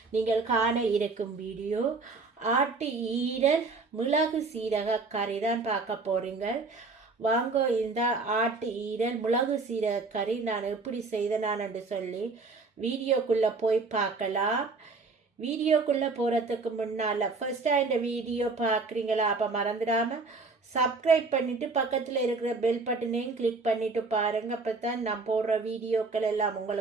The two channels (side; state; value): left; quieter; 4.0 dB